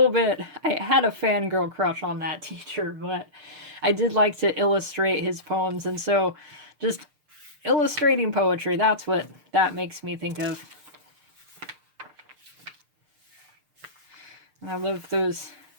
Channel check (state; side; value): late; left; 6.6 ms